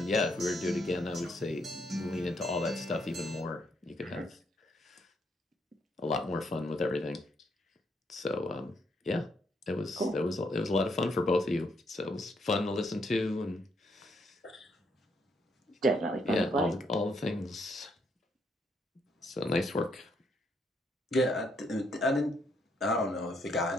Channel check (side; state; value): both; normal; correlation 0.74